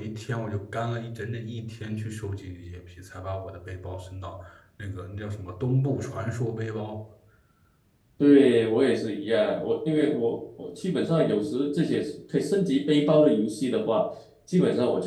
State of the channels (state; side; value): identical; both; correlation 1.00